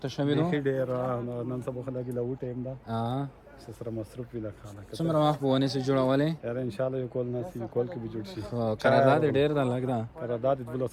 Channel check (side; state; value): both; identical; correlation 1.00